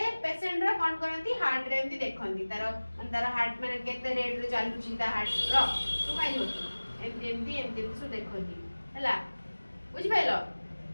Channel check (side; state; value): both; inverted; correlation -1.00